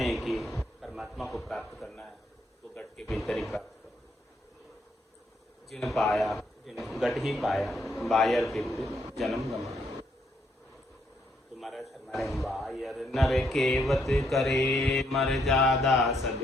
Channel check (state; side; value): normal; both; correlation 0.73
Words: हैं कि परमात्मा को प्राप्त करना है तो घट के भीतर ही प्राप्त करो। जिन पाया जिन घट ही पाया, बायर विपरीत जन्म गमाया। तो महाराज फरमा रहे हैं बायर नर केवत करे मर्यादा सब